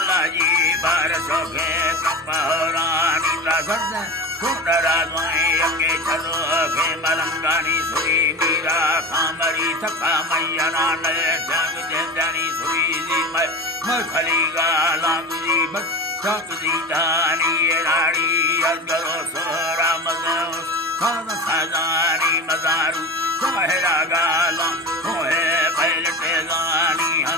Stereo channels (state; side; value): normal; both; correlation 0.30